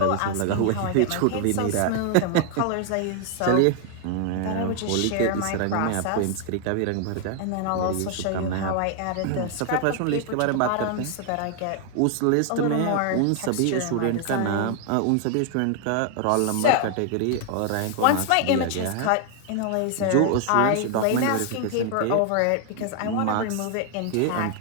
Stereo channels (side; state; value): both; different; correlation 0.00